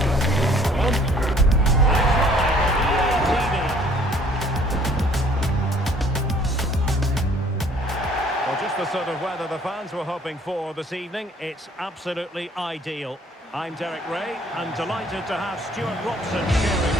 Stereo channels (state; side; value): normal; both; correlation 0.58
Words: Well, just the sort of weather the fans were hoping for this evening. It's absolutely ideal. I'm Derek Ray, and delighted to have Stuart Robson sharing